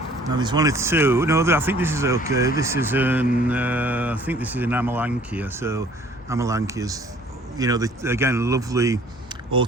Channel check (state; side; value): normal; both; correlation 0.55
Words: Now there's one or two. No, I think this is okay. This is I think this is an Amelanchier. So Amelanchiers, you know, again, lovely